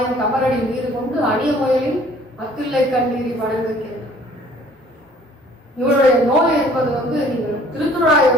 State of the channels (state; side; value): normal; both; correlation 0.55